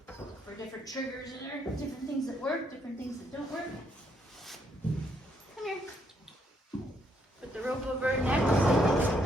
for different triggers in there, different things that work, different things that don't work. Come here. Put the rope over her neck,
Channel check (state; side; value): normal; both; correlation 0.73